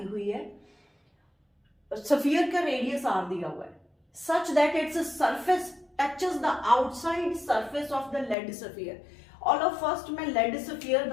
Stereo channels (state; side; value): drops out; right; at 8.3 s